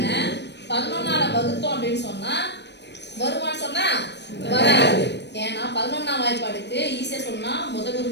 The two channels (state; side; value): late; right; 0.50 ms